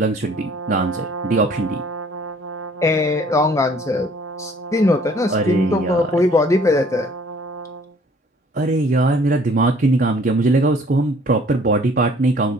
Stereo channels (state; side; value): normal; both; correlation 0.56